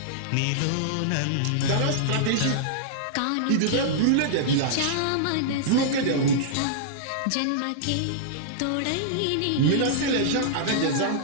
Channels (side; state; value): both; different; correlation -0.02